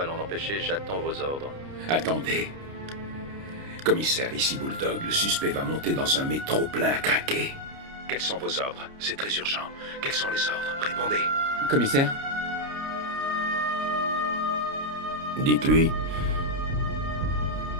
l'en empêcher? J'attends vos ordres. Attendez. Commissaire, ici Bulldog. Le suspect va monter dans un métro plein à craquer. Quels sont vos ordres? C'est très urgent. Quels sont les ordres? Répondez. Commissaire? Dites-lui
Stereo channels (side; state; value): left; late; 29 ms